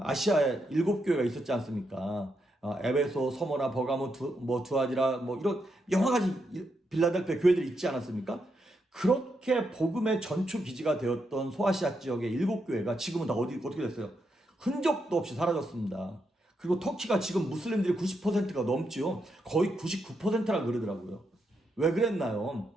7교회가 있었지 않습니까? 에베소, 서모나, 버가모, 두아디라, 이런 여러 가지 빌라델피아 교회들이 있지 않았습니까? 그렇게 복음의 전초 기지가 되었던 소아시아 지역의 7교회가 지금은 다 어떻게 됐어요? 흔적도 없이 사라졌습니다. 그리고 터키가 지금 무슬림들이 90%가 넘지요. 거의 99%라 그러더라고요. 왜 그랬나요?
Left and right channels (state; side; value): normal; both; correlation 0.82